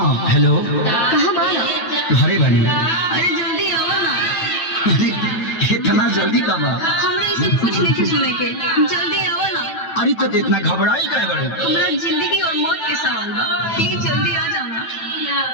हेलो, कहाँ बाना? घरे बानी। अरे जल्दी आओ ना। अरे इतना जल्दी कब आ? हमरा ये सब कुछ नहीं सुने के, जल्दी आओ ना। अरे तो इतना घबराई काहे बाड़ू? हमरा जिंदगी और मौत के सवाल बा, ठीक जल्दी आ जाना।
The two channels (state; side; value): late; right; 9.1 ms